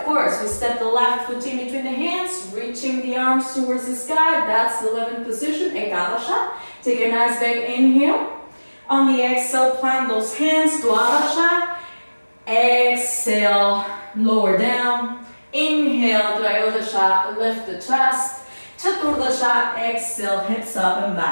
course, we step the left foot in between the hands, reaching the arms towards the sky. That's the 11th position, Ekadasha. Take a nice big inhale. On the exhale, plant those hands, Dwadasha. Exhale, lower down. Inhale, Trayodasha, lift the chest. Chaturdasha, exhale, hips up and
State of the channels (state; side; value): inverted; both; correlation -1.00